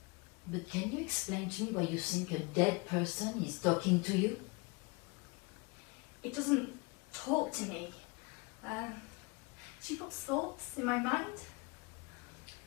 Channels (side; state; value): right; quieter; 28.7 dB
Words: But can you explain to me why you think a dead person is talking to you? It doesn't talk to me. She puts thoughts in my mind.